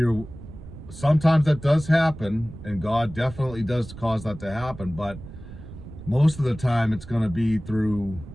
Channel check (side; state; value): right; noise; rumble, 14 dB below the sound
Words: sometimes that does happen, and God definitely does cause that to happen. But most of the time it's going to be through,